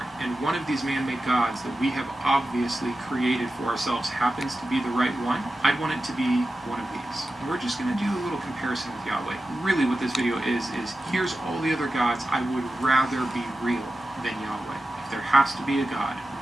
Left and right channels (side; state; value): both; normal; correlation 0.93